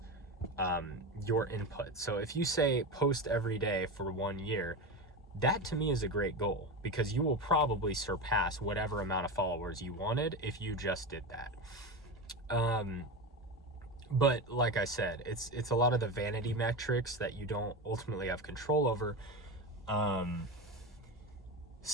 your input. So if you say post every day for 1 year, that to me is a great goal, because you will probably surpass whatever amount of followers you wanted if you just did that. But like I said, it's a lot of the vanity metrics that you don't ultimately have control over.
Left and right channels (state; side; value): normal; both; correlation 0.21